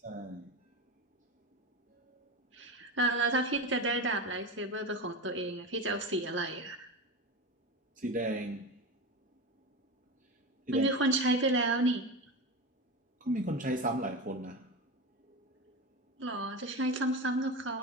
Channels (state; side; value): normal; both; correlation 0.22